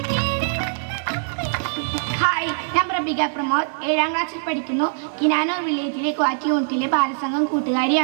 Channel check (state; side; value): silent; left; digital silence